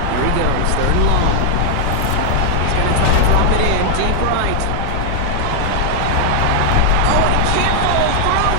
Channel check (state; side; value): different; both; correlation -0.01